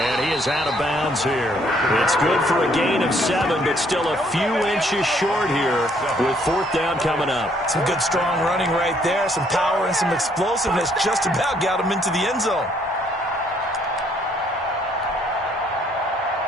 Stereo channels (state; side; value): normal; both; correlation 0.66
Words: he is out of bounds here. It's good for a gain of 7, but still a few inches short here with 4th down coming up. Some good strong running right there. Some power and some explosiveness just about got him into the end zone.